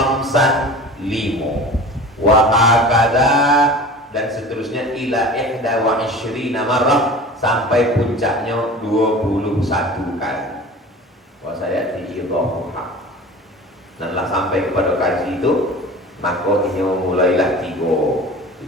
5. Wa hakada, dan seterusnya ila ihda wa ishrina marrah, sampai puncaknya 21 kali. Wa saya diidhafuha. Dan lah sampai kepada kaji itu, maka ini mulailah 3,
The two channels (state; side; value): normal; both; correlation 0.38